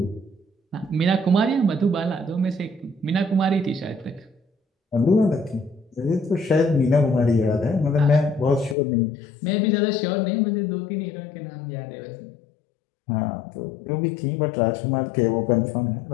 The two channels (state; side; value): drops out; right; at 8.8 s